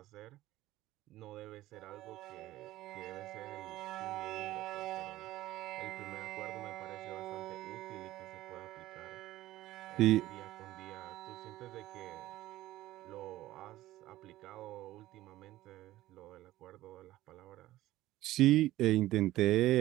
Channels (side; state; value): left; quieter; 15.8 dB